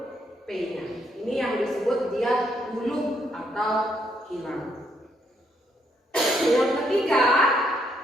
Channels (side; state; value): both; normal; correlation 0.74